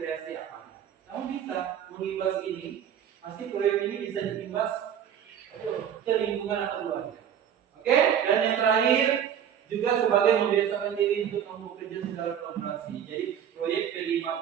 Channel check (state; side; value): quieter; left; 9.1 dB